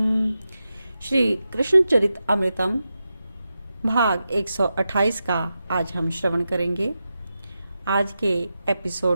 श्री कृष्ण चरित अमृतम भाग 128 का आज हम श्रवण करेंगे। आज के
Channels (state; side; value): inverted; both; correlation -0.90